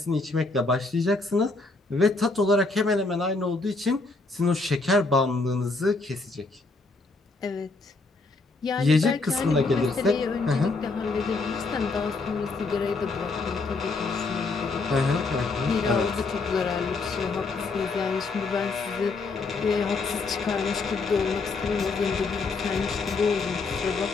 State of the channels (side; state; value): right; quieter; 3.7 dB